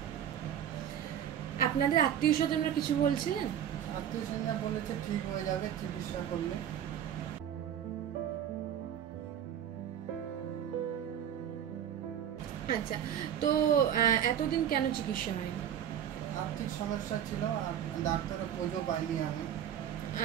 আপনাদের আত্মীয় স্বজনরা কিছু বলছিলেন? আত্মীয় স্বজনরা বলেছে ঠিক হয়ে যাবে চিকিৎসা করলে। আচ্ছা, তো এতদিন কেন চিকিৎসা হয়নি? আর্থিক সমস্যা ছিল আর ডাক্তারের খোঁজও পাইনি আমি।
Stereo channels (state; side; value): quieter; left; 9.7 dB